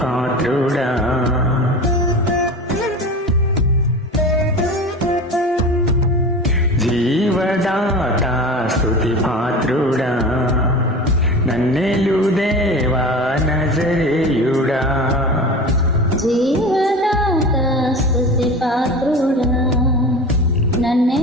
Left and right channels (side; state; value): both; normal; correlation 0.32